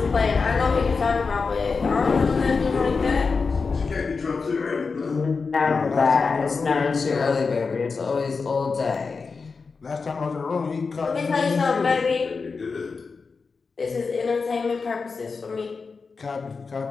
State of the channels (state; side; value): quieter; right; 4.7 dB